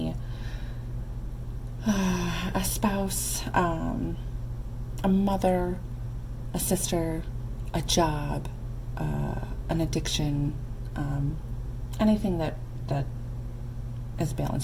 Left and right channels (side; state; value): both; identical; correlation 1.00